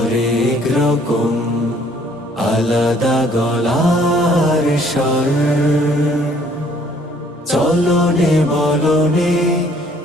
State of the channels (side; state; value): both; normal; correlation 0.60